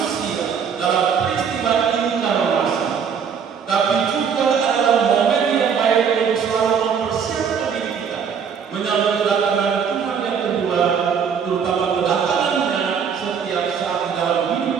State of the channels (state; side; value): quieter; left; 6.9 dB